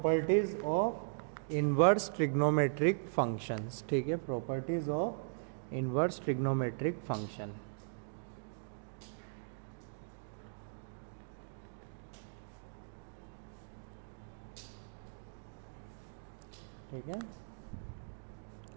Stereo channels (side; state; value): left; silent; digital silence